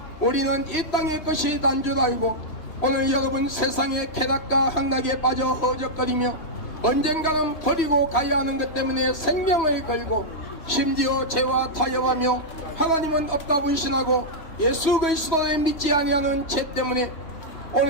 우리는 이 땅의 것이 난 줄 알고 오늘 여러분 세상의 쾌락과 향락에 빠져 허적거리며 언젠가는 버리고 가야 하는 것 때문에 생명을 걸고 심지어 죄와 타협하며 하나님은 없다 불신하고 예수 그리스도를 믿지 아니하는 죄 때문에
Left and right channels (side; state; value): right; late; 3.2 ms